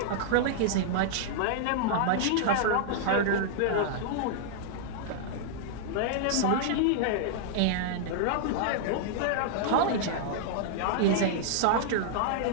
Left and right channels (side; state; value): both; different; correlation -0.01